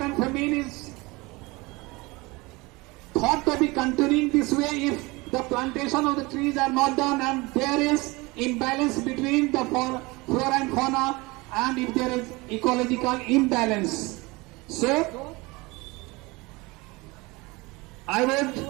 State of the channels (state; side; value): quieter; left; 23.9 dB